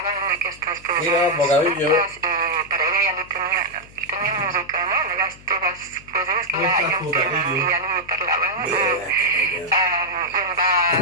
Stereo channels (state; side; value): noise; left; hum, 23 dB below the sound